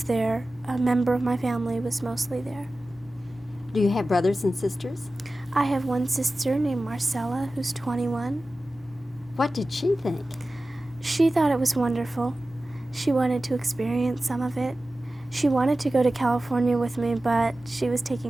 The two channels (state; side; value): normal; both; correlation 0.95